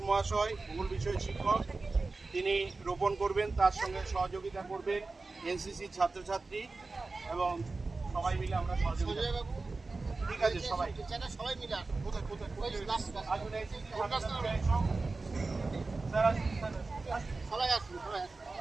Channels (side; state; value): left; quieter; 3.7 dB